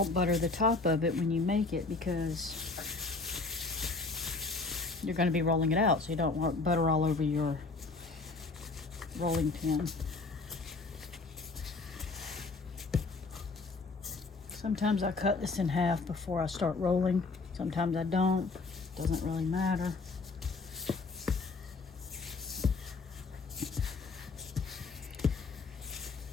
butter the top of it when you make it, because you're going to be rolling it out, so you don't want butter all over your rolling pin. Sometimes I cut this in half before I start rolling. Sometimes I don't. Doesn't really matter.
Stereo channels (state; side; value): quieter; right; 3.8 dB